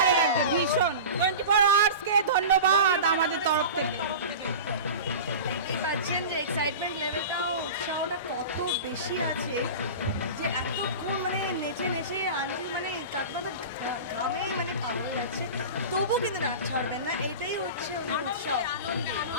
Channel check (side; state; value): both; inverted; correlation -0.31